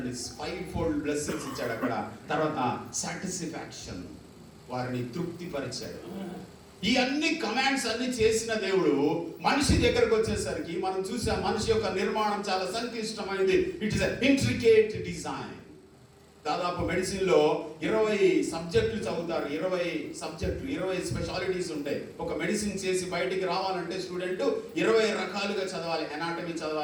5-fold బ్లెస్సింగ్స్ ఇచ్చాడు అక్కడ. తర్వాత సాటిస్ఫాక్షన్, వారిని తృప్తిపరిచాడు. ఈ అన్ని కమాండ్స్ అన్ని చేసిన దేవుడు మనిషి దగ్గరకు వచ్చేసరికి మనం చూసాం, మనిషి యొక్క నిర్మాణం చాలా సంక్లిష్టమైనది. It is intricate design. దాదాపు మెడిసిన్ లో 20 సబ్జెక్టులు చదువుతారు. 20 స్పెషాలిటీస్ ఉంటాయి. ఒక మెడిసిన్ చేసి బయటికి రావాలంటే స్టూడెంట్ 20 రకాలుగా చదవాలి. ఎనాటమీ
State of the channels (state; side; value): identical; both; correlation 1.00